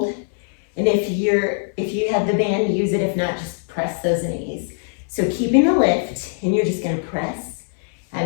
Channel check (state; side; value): silent; right; digital silence